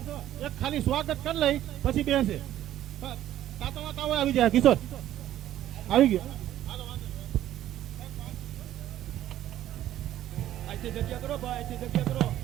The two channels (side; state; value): left; quieter; 12.7 dB